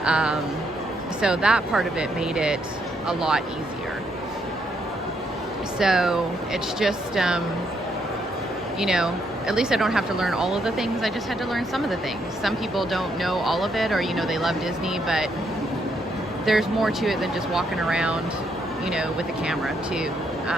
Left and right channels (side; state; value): both; normal; correlation 0.75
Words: So that part of it made it a lot easier. So it's just, you know, at least I don't have to learn all of the things. I just had to learn some of the things. Some people don't know all of it, or, you know, they love Disney, but there's more to it than just walking around, you know, with a camera too,